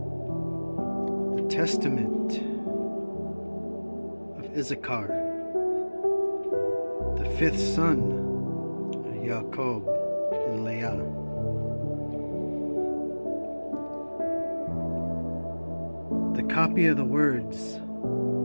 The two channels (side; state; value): both; inverted; correlation -1.00